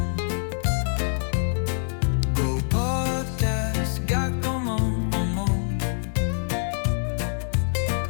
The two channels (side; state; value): right; silent; digital silence